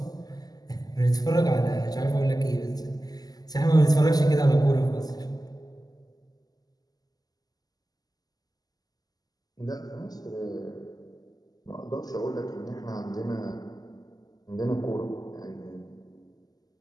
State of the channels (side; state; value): right; late; 0.18 ms